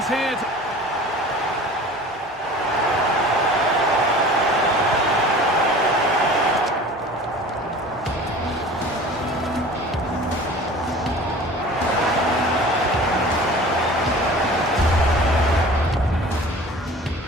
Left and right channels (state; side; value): normal; both; correlation 0.42